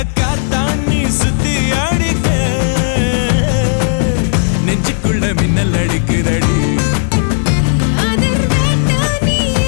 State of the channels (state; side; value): silent; right; digital silence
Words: காத்தாண்ணி சுத்தி அடிக்க நெஞ்சுக்குள்ள மின்னல் அடிக்குதடி